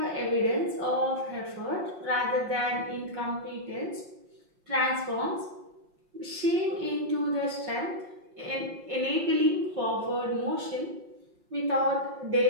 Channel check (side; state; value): left; late; 5.7 ms